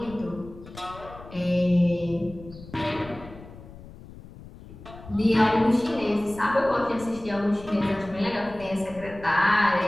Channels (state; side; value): noise; left; rumble, 17 dB below the sound